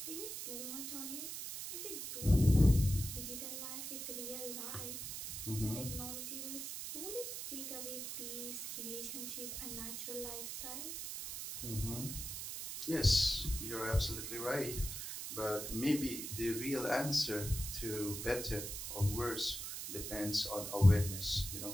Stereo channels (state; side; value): noise; right; hiss, 6 dB below the sound